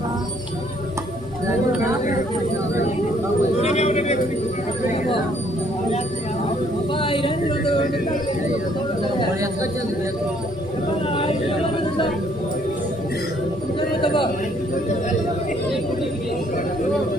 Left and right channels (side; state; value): both; normal; correlation 0.65